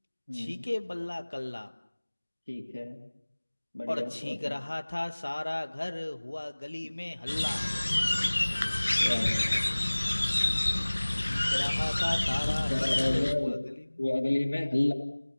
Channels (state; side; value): inverted; both; correlation -1.00